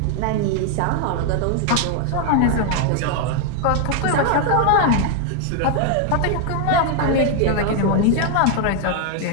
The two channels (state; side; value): different; both; correlation 0.00